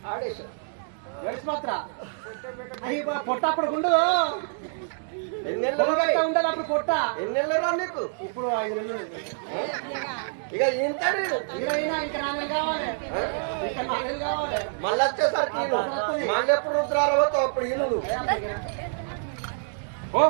ఆడేశారు గడిచి మాత్ర అది పొట్టప్పుడు గుండు ఎన్నెళ్ళు ఉండదు అప్పుడు పొట్ట ఎన్నెళ్ళు రా నీకు ఇప్పుడు 5 నెలలు ఇక ఇంతడు ఇరవైనా ఇంకా 4 నెలలు కావాలి ఇంకా 4 నెలలు కావాలి మళ్ళీ వచ్చేసరికి ఈను. మళ్ళీ ఎప్పుడు రుద్రారవతో అప్పుడు ఈను నువ్వు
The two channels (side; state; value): left; silent; digital silence